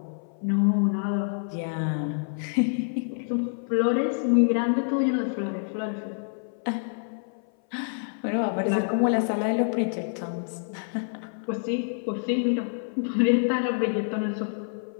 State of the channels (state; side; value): silent; right; 57 dB below the other